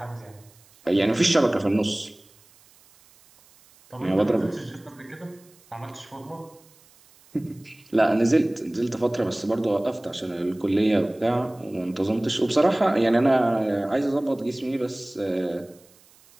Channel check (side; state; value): right; noise; hiss, 29 dB below the sound